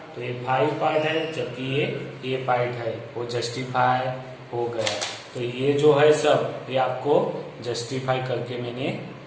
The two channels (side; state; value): both; identical; correlation 1.00